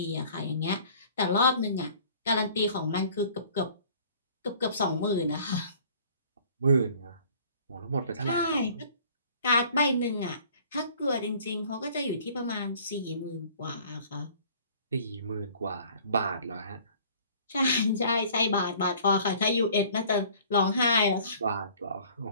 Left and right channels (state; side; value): inverted; both; correlation -0.52